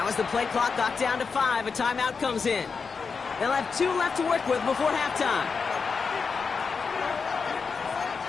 as the play clock got down to 5, a timeout comes in. They'll have 2 left to work with before halftime.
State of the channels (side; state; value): right; quieter; 5.2 dB